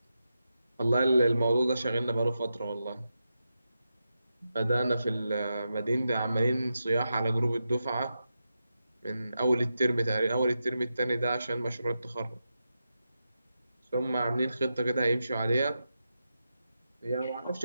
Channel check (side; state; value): both; inverted; correlation -0.88